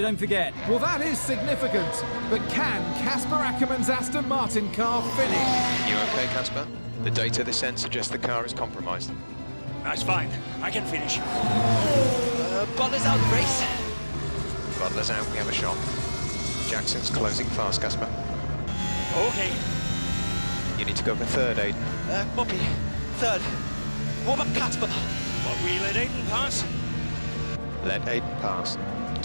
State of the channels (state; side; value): inverted; both; correlation -1.00